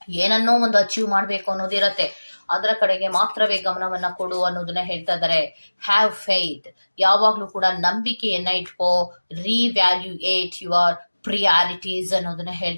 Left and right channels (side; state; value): both; inverted; correlation -1.00